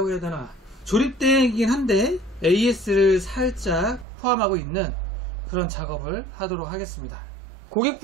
해야 되나, 조립대행이긴 한데 AS를 살짝 포함하고 있는 그런 작업을 하도록 하겠습니다.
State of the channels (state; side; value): drops out; left; at 4.0 s